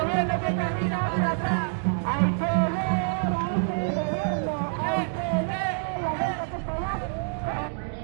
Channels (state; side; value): silent; left; digital silence